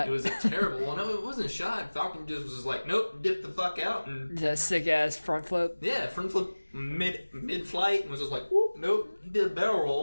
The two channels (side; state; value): both; inverted; correlation -1.00